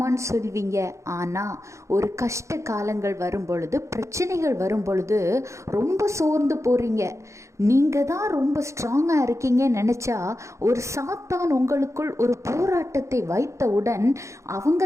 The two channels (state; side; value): late; left; 0.14 ms